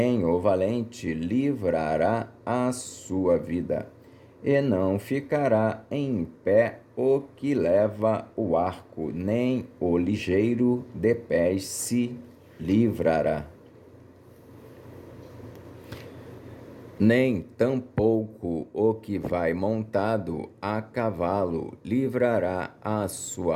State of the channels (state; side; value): identical; both; correlation 1.00